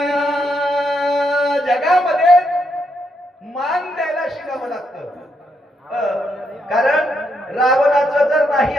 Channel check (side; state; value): both; normal; correlation 0.78